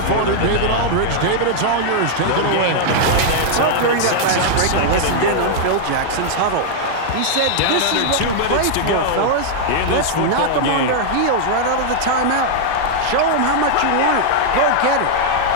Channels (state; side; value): different; both; correlation -0.01